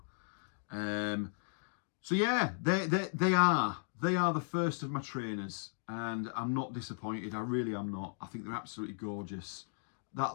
So yeah, they are the first of my trainers, and I'm not disappointed. I really am not. I think they're absolutely gorgeous.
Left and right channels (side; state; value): right; silent; digital silence